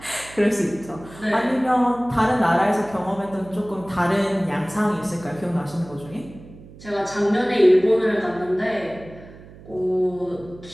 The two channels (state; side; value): noise; right; hum, 19 dB below the sound